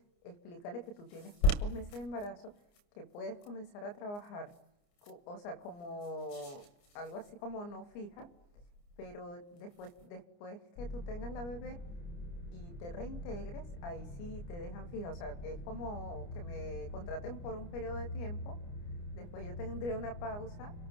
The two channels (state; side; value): late; right; 29 ms